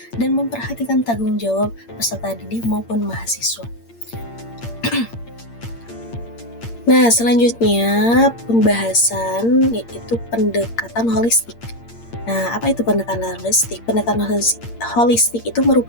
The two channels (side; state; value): right; late; 8.7 ms